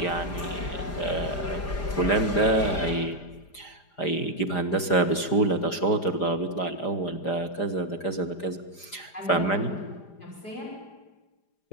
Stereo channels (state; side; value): late; right; 5.0 ms